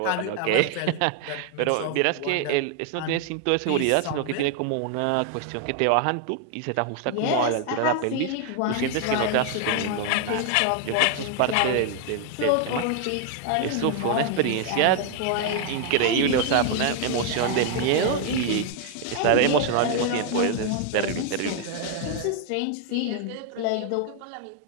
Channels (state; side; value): different; both; correlation 0.00